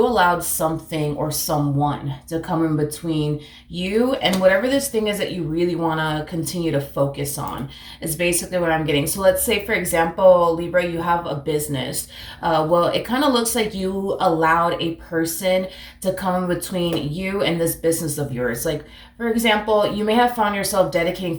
allowed something or someone to come in between you and whatever this thing is that you really want to continue to focus on is basically what I'm getting. So let's say, for example, Libra, you have a business. Well, it kind of looks like you allowed a person to come in between you and this business of yours. Like, for example, you may have found yourself dedicating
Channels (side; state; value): both; identical; correlation 1.00